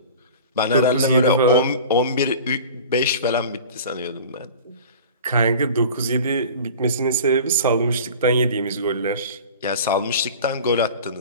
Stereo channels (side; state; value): both; inverted; correlation -0.39